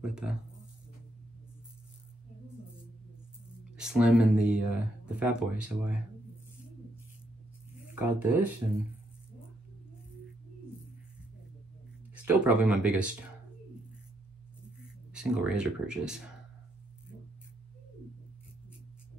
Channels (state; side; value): normal; both; correlation 0.76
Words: with the Slim and the Fat Boy, so I got this, and still probably my biggest single razor purchase.